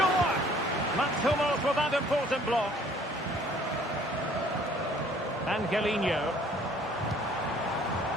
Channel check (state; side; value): normal; both; correlation 0.57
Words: Mats Hummels with that important block. Angelino.